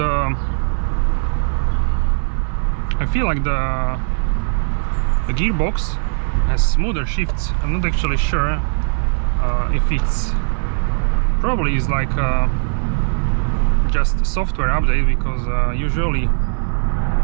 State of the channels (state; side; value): silent; left; 67 dB below the other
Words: I feel like the gearbox has smoother shifts. I'm not actually sure if it's probably is like just a software update, because usually